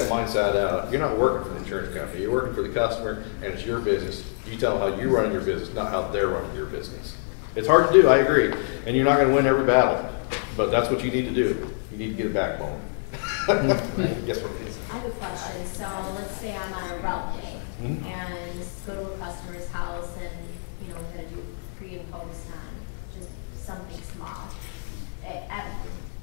mindset out. You're not working for the insurance company. You're working for the customer, and it's your business. You tell them how you're running your business, not how they're running your business. It's hard to do, I agree, and you're not going to win every battle, but that's what you need to do. You need to get a backbone. Yes, what it is. I have a question. So let's say I'm on a route day and go to a customer's house and, you know, we're going to do pre and post on just something small.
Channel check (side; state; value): right; silent; digital silence